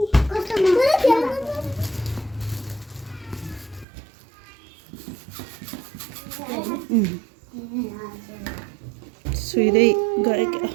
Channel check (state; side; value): drops out; left; at 3.9 s